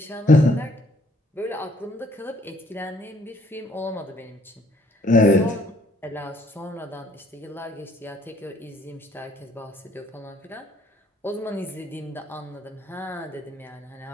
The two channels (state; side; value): normal; both; correlation 0.63